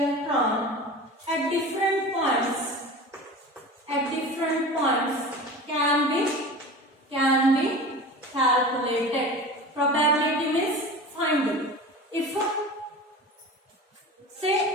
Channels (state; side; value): normal; both; correlation 0.34